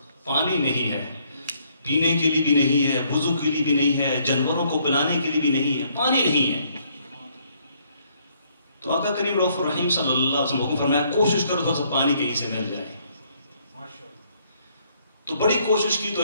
پانی نہیں ہے، پینے کے لیے بھی نہیں ہے، وضو کے لیے بھی نہیں ہے، جانوروں کو پلانے کے لیے بھی نہیں ہے، پانی نہیں ہے۔ تو آقا کریم رؤوف الرحیم صلی اللہ علیہ وسلم حکم فرمایا کوشش کرو تھوڑا سا پانی کہیں سے مل جائے۔ تو بڑی کوشش کی تو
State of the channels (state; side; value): inverted; both; correlation -0.68